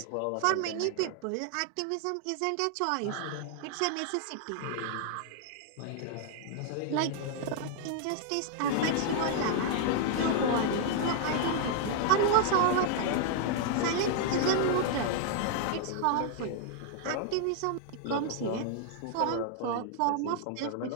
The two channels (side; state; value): both; different; correlation 0.00